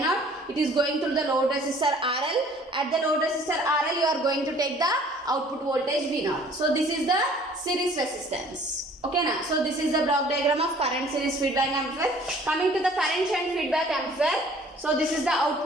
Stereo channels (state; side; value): normal; both; correlation 0.53